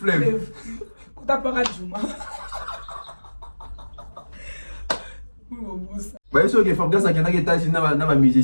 T'as pas radiouma. Même si que Fabrice a quelqu'un qui est assis dans un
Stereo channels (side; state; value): both; inverted; correlation -1.00